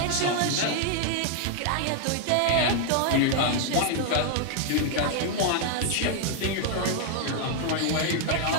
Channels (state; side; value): different; both; correlation 0.00